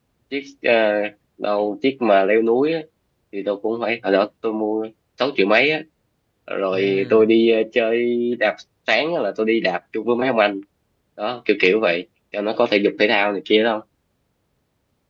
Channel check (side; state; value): both; identical; correlation 1.00